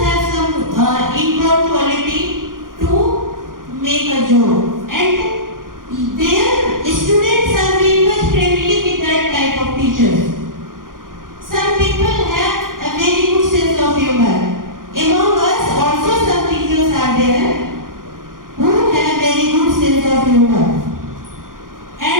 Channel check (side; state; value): left; late; 0.90 ms